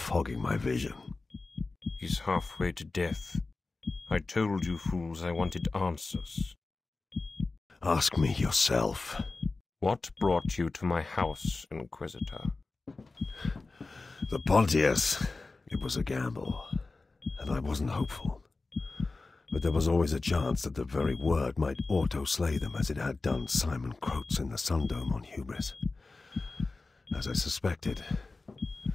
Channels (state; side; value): quieter; right; 3.6 dB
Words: my vision. He's halfway to death. I told you fools I wanted answers. Ask me yourself. What brought you to my house, Inquisitor? The Pontius. It was a gamble, and I wasn't hopeful. But there was always a chance that the very word might auto-slay them as it had done Simon Croats in the Sundome on Hubris. As I suspected,